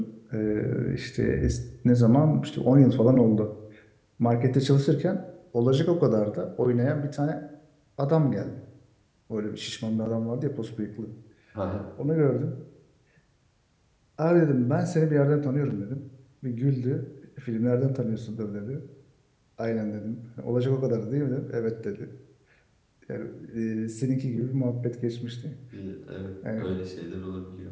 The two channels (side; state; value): both; identical; correlation 1.00